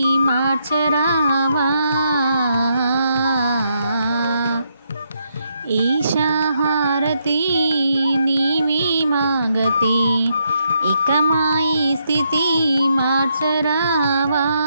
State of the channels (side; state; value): both; inverted; correlation -0.78